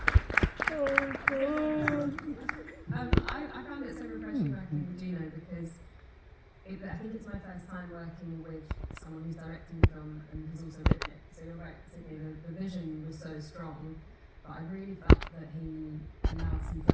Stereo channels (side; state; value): both; identical; correlation 1.00